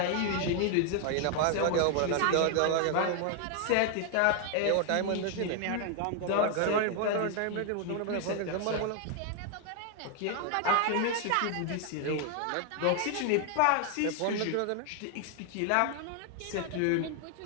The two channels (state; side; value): different; both; correlation 0.00